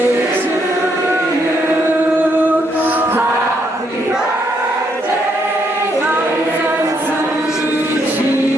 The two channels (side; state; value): both; normal; correlation 0.74